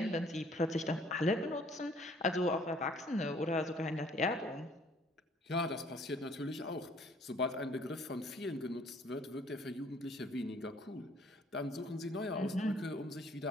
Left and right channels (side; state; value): both; normal; correlation 0.59